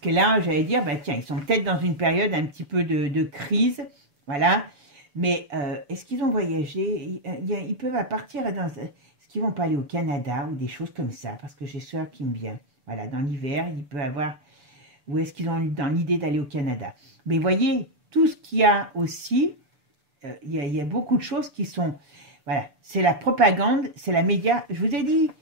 là, j'allais dire, bah tiens, ils sont peut-être dans une période un petit peu de crise. Voilà. Mais est-ce qu'ils ont voyagé? Ils peuvent partir dans... Est-ce qu'ils vont pas aller au Canada ou des choses comme ça? Parce que j'ai soeur qui me vient. Voilà, dans l'hiver, il peut avoir... Ou est-ce qu'ils ont dans l'idée d'aller au Canada? Mais voyez, tout ce qu'il y a aussi, il y a beaucoup de choses qui sont... Voilà, c'est la propagande, c'est la média. Je vous ai dit,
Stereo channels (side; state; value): left; late; 6.9 ms